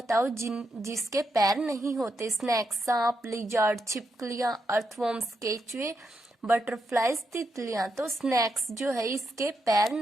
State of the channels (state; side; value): normal; both; correlation 0.82